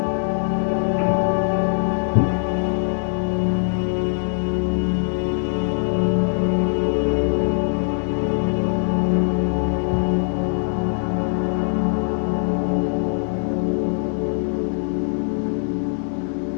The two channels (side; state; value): right; silent; digital silence